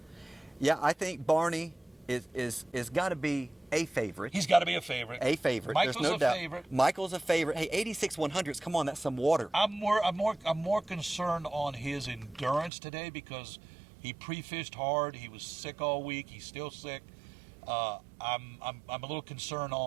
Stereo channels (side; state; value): left; drops out; at 12.7 s